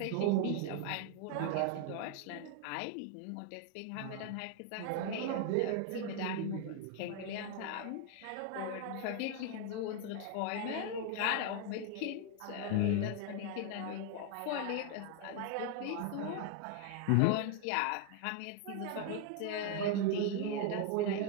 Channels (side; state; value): both; different; correlation 0.00